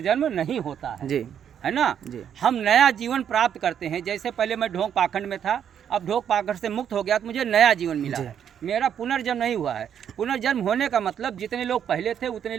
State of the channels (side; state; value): left; quieter; 8.8 dB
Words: नहीं होता है जी, है ना जी। हम नया जीवन प्राप्त करते हैं। जैसे पहले मैं ढोंग पाखंड में था, अब ढोंग पाखंड से मुक्त हो गया तो मुझे नया जीवन मिला है, मेरा पुनर्जन्म नहीं हुआ है। पुनर्जन्म होने का मतलब जितने लोग पहले थे उतने